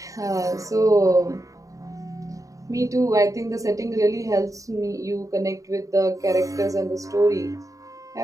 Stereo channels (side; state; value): left; late; 0.16 ms